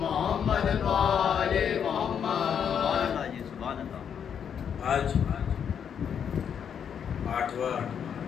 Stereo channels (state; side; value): quieter; right; 8.0 dB